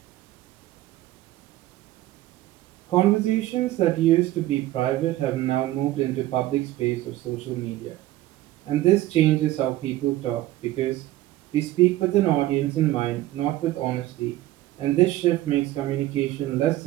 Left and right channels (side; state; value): left; quieter; 15.7 dB